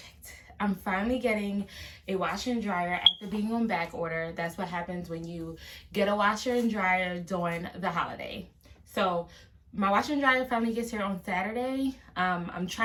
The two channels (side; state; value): both; identical; correlation 1.00